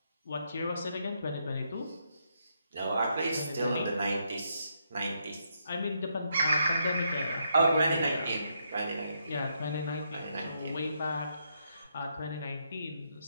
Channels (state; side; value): inverted; both; correlation -0.77